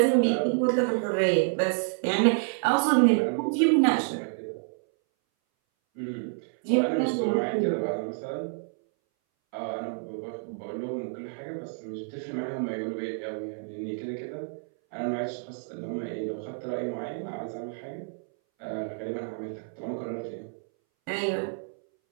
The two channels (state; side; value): silent; left; 59 dB below the other